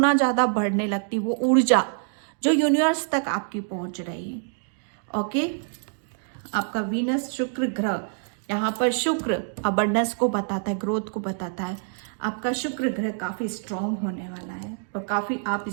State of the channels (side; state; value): left; silent; 61 dB below the other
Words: ज़्यादा बढ़ने लगती, वो ऊर्जा जो यूनिवर्स तक आपकी पहुंच रही है, ओके। आपका वीनस शुक्र ग्रह, यहाँ पर शुक्र अबंडेंस को बताता है, ग्रोथ को बताता है। आपका शुक्र ग्रह काफ़ी स्ट्रॉन्ग होने वाला है, और काफ़ी आप